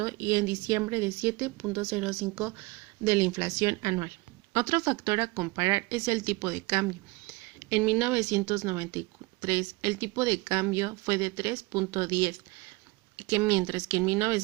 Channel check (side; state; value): left; quieter; 24.6 dB